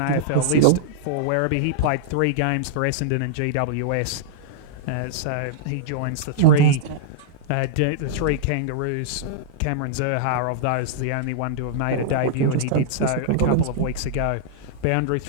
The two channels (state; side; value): different; both; correlation -0.02